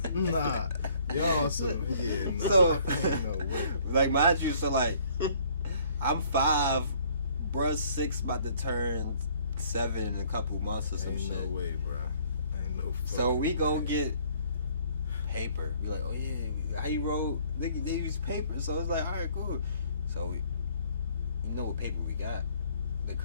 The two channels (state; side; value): inverted; both; correlation -0.60